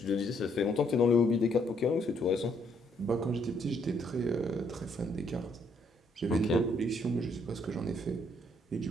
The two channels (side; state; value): both; normal; correlation 0.70